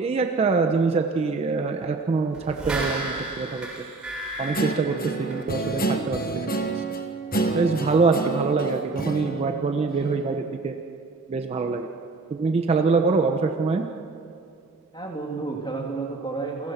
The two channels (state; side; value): quieter; left; 3.7 dB